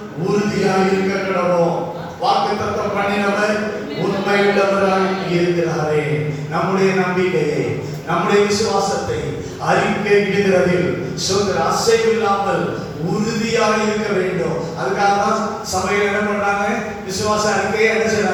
உறுதியாக இருக்க கடவோம். வாக்குத்தத்தம் பண்ணினவர் உண்மை உள்ளவராய் இருக்கிறாரே. நம்முடைய நம்பிக்கையை, நம்முடைய விசுவாசத்தை அறிக்கையிடுவதில் அசைவில்லாமல் உறுதியாக இருக்க வேண்டும். அதுக்காக தான் சபையில் என்ன பண்றாங்க? விசுவாச அறிக்கையை என்ன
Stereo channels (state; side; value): identical; both; correlation 1.00